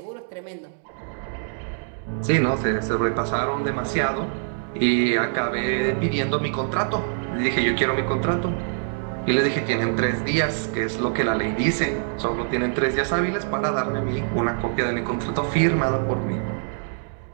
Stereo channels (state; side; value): silent; left; digital silence